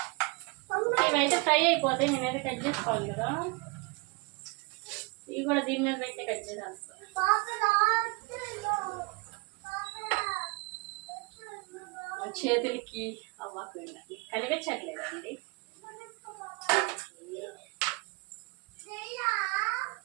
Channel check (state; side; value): quieter; left; 28.3 dB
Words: ఇవైతే ఫ్రై అయిపోతాయి. నేనైతే కట్ చేసుకోవాలి కదా, ఇవి కూడా దీని మీద అయితే కట్ చేసేస్తాను. చేతులకి అవ్వకు కనిపించట్లేదండి.